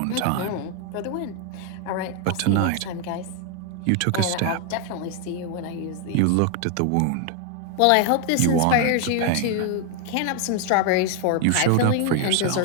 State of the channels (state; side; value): different; both; correlation 0.01